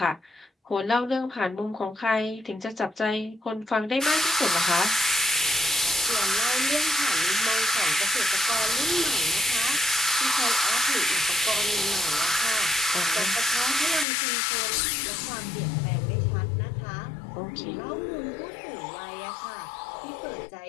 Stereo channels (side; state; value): right; drops out; at 14.1 s